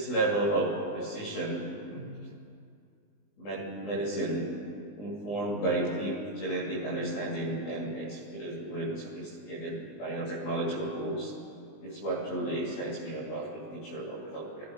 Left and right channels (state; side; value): late; right; 19 ms